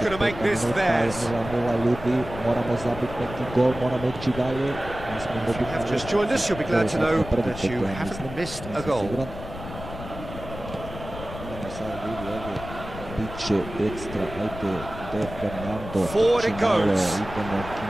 minuta, 0-0 ljudi, moramo zabiti neki gol, moramo ići dalje. Have just joined us, you'll be glad to know that you haven't missed a goal. Idemo sad vidi ovdje, bit će ekstra, ajde, De Fernando, forward it goes. Idemo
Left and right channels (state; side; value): noise; left; rumble, 11 dB below the sound